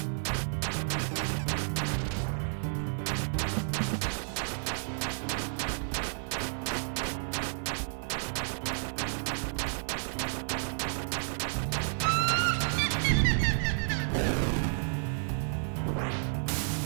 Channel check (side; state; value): left; silent; 57 dB below the other